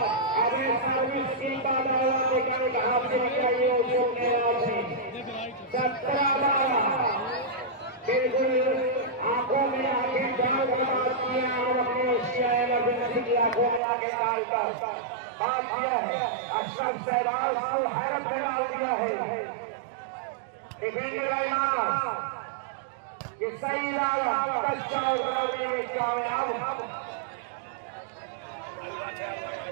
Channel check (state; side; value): drops out; left; at 13.8 s